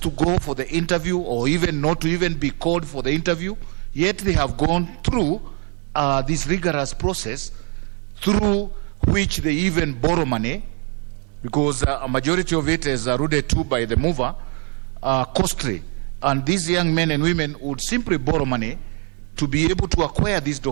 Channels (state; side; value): quieter; left; 37.8 dB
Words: to go for the interview, or even not to even be called for the interview, yet they have gone through this rigorous process through which they even borrow money, because a majority of it is alluded to by the mover, costly. And these young men and women would simply borrow money to be able to acquire these